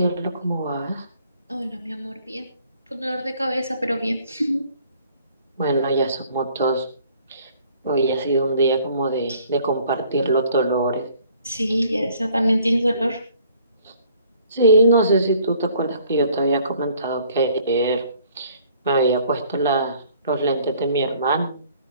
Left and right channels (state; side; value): inverted; both; correlation -0.59